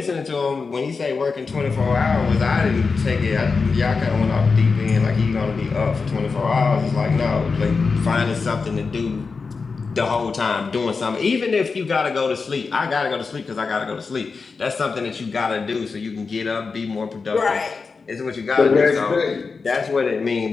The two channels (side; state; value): right; quieter; 4.7 dB